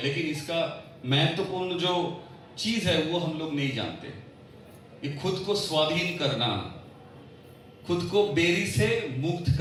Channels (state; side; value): identical; both; correlation 1.00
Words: लेकिन इसका महत्वपूर्ण जो चीज है वो हम लोग नहीं जानते। ये खुद को स्वाधीन करना, खुद को बेरी से मुक्त